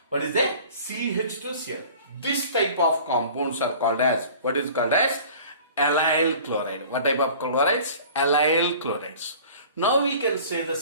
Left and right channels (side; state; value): both; inverted; correlation -0.45